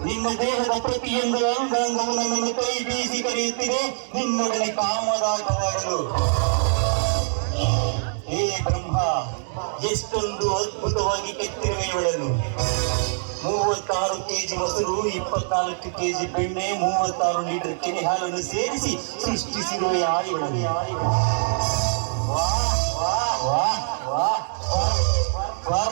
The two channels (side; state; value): left; silent; digital silence